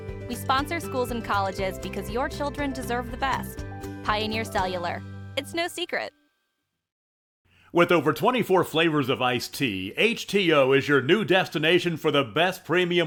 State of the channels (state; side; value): identical; both; correlation 1.00